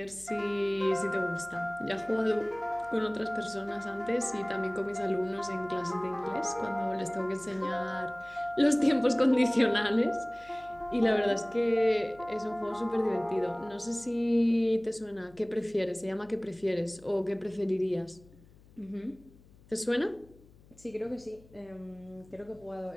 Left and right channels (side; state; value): left; noise; hum, 25 dB below the sound